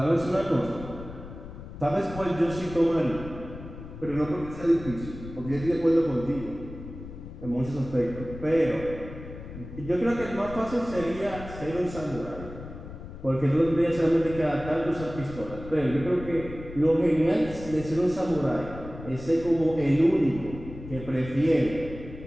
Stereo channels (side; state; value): left; noise; rumble, 12 dB below the sound